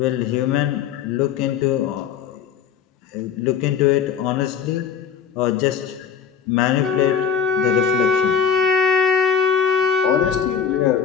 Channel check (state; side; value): quieter; right; 7.6 dB